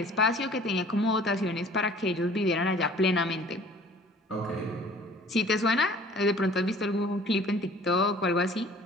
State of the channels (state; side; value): normal; both; correlation 0.50